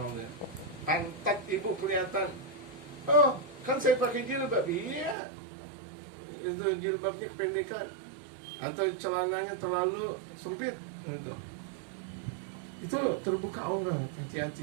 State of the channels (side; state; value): left; drops out; at 5.2 s